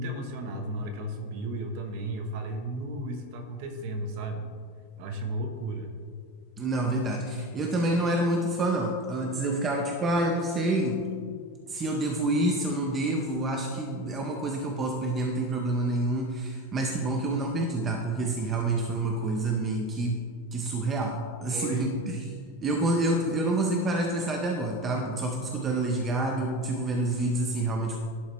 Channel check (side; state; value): both; normal; correlation 0.28